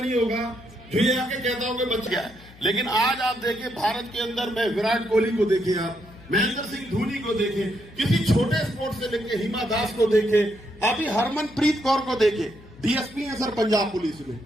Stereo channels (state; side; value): noise; left; hum, 22 dB below the sound